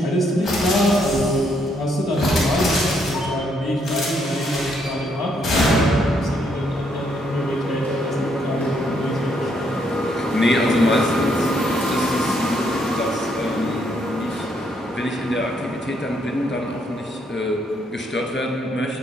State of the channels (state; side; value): normal; both; correlation 0.73